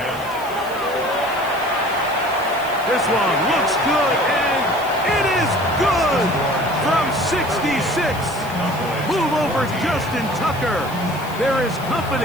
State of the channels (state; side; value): noise; left; hiss, 18 dB below the sound